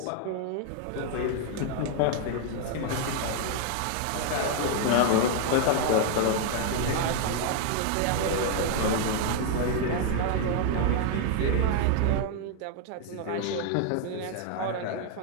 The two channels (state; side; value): different; both; correlation 0.00